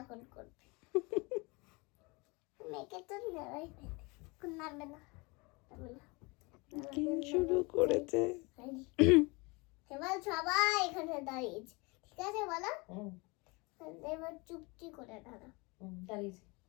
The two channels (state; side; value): quieter; right; 27.2 dB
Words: করবে। মেয়েকে তো নেওয়াই নামবে না। কি শুরু করেছে? এবার সবাই এখানে দাঁড়িয়েছে, ঠিক আছে বলো? এবার চুপটি করে দাঁড়া।